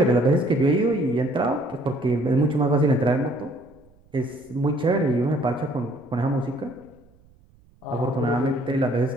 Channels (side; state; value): right; noise; rumble, 30 dB below the sound